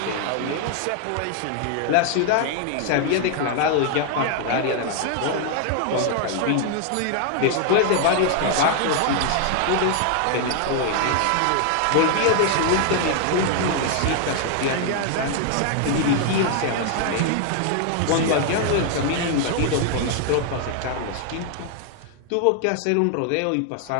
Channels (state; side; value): different; both; correlation 0.00